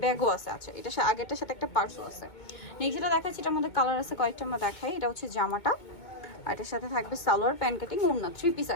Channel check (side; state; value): right; late; 2.2 ms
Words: ব্যাগও আছে। আচ্ছা, এটা আগেরটার সাথে একটা পার্সও আছে। নেক্সট যেটা দেখাচ্ছি এটার মধ্যে কালার আছে কয়েকটা, আমরা দেখাই। এটা হচ্ছে জামাটা, আর এটার সাথে থাকবে সালোয়ার, প্যান্ট কাটিং, ওড়না, 3 পিস